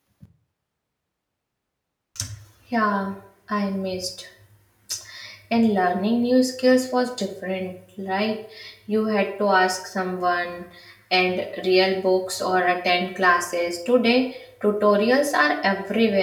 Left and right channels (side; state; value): both; identical; correlation 1.00